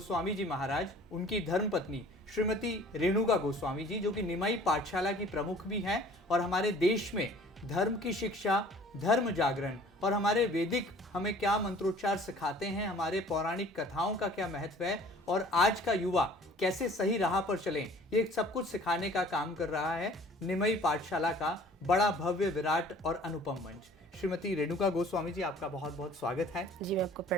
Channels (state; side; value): normal; both; correlation 0.50